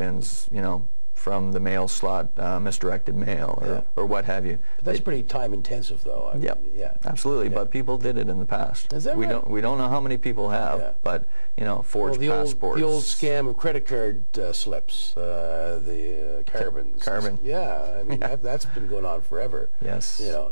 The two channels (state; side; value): inverted; both; correlation -1.00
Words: you know, from the mail slot, misdirected mail, or what have you. But that's pretty time intensive, though. I mean, yeah, absolutely. But people did it in the past. Is that right? We don't know how many people have, but you know, forged passports. The old scam of credit card slips, the carbons. Carbon. Yeah, I mean that's been going on forever. Yes. You know,